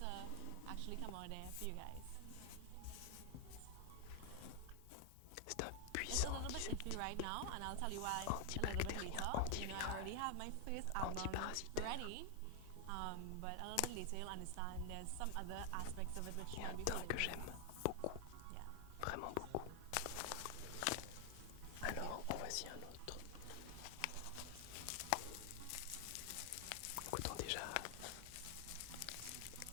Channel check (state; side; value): different; both; correlation 0.00